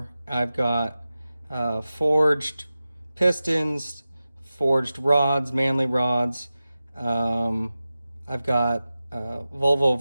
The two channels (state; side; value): inverted; both; correlation -0.95